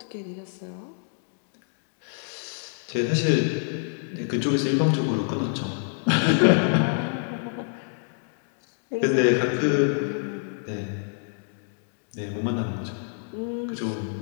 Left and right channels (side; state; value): right; silent; digital silence